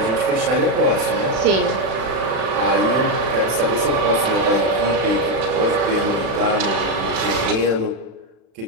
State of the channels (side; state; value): left; late; 36 ms